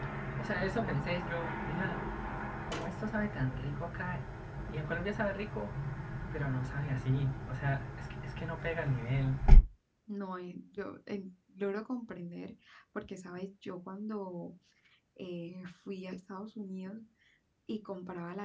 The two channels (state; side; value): identical; both; correlation 1.00